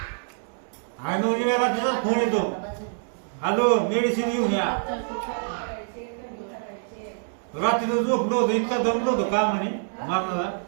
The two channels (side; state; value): left; silent; digital silence